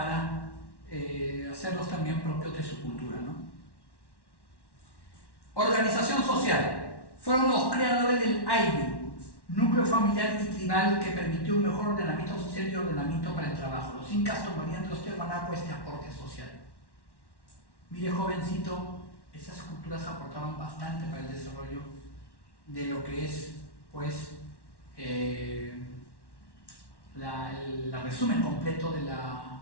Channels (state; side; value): late; right; 1.1 ms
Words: hacerlos también propios de su cultura, ¿no? Organización social. Fueron los creadores del AIBI, núcleo familiar y tribal que permitió un mejor ordenamiento social y ordenamiento para el trabajo. Los incas tomarían de los tiahuanaco este aporte social. Mire, jovencito, esas culturas aportaban bastante para el desarrollo de lo que es, pues, el resumen completo de